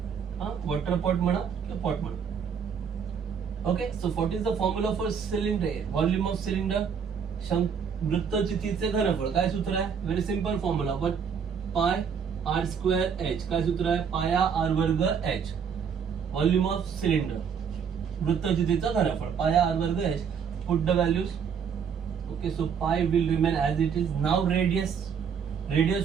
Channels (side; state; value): left; quieter; 6.9 dB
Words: water pot म्हणा किंवा पॉट म्हणा okay so what is the formula for cylinder volume of cylinder वृत्तचितीचे घनफळ काय सूत्र आहे very simple formula but pi r square h काय सूत्र आहे पाया आर वर्ग एच व्हॉल्यूम ऑफ सिलेंडर वृत्तचितीचं घनफळ पाया आर वर्ग h put the values okay so pi will remain as it is now